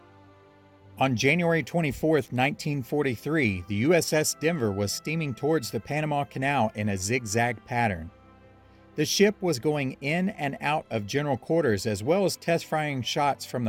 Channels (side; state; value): both; identical; correlation 1.00